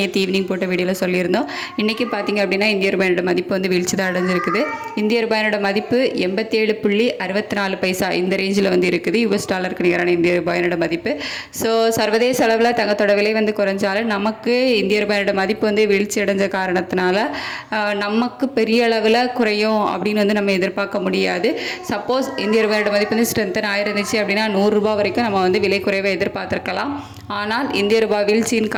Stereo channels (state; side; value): identical; both; correlation 1.00